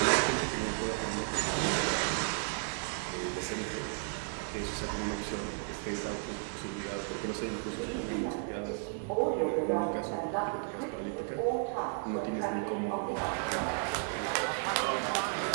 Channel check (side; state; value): left; silent; 55 dB below the other